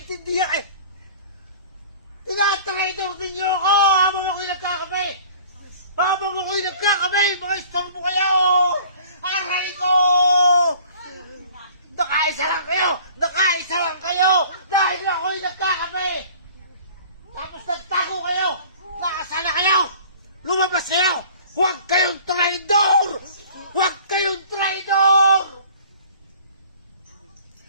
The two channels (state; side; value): inverted; both; correlation -0.48